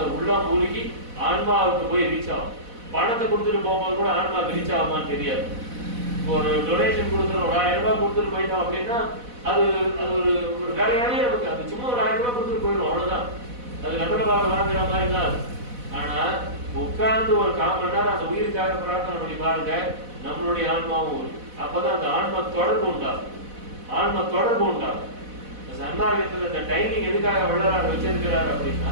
உள்ளம் மூழ்கி ஆன்மாவுக்கு போய் ரீச் ஆகும். பணத்தை கொடுத்துட்டு போகும்போது கூட ஆன்மாவுக்கு ரீச் ஆகுமான்னு தெரியாது. ஒரு டொனேஷன் கொடுத்துரும், ஒரு 1000 ரூபாய் கொடுத்துட்டு போயிட்டோம் அப்படின்னா அது ஒரு வேலையாவே நமக்கு அது சும்மா ஒரு 1000 ரூபாய் கொடுத்துட்டு போயிடும், அவ்வளவுதான். அது நகரமாக வாங்குற மாதிரி தான் அது. ஆனா உட்கார்ந்து ஒரு 1/4 மணி நேரம் அந்த உயிருக்காக பிரார்த்தனை பண்ணி பாருங்க, நம்மளுடைய ஆன்மாவும் இருக்கு. அப்பதான் அந்த ஆன்மா தொடர்பு உண்டாகும், ஆன்மா தொடர்பு உண்டாகும். சன்மார்க்கத்துல இந்த டைமிங் எதுக்காக வள்ளலார் வச்சிருக்கிறார் அப்படின்னா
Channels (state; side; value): late; left; 4.1 ms